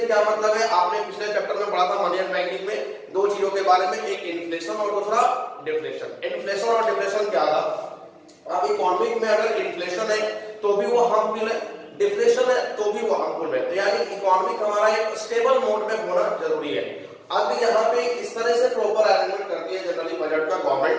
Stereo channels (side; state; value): both; identical; correlation 1.00